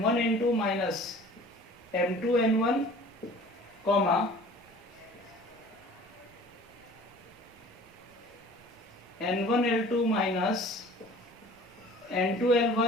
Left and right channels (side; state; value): both; normal; correlation 0.47